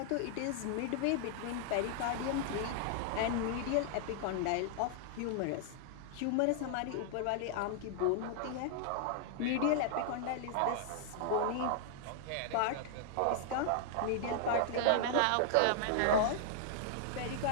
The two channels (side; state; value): both; different; correlation -0.01